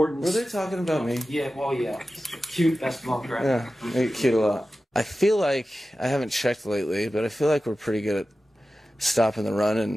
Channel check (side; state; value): both; normal; correlation 0.94